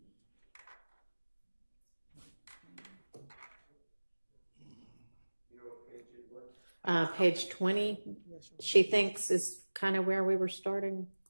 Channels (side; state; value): both; inverted; correlation -1.00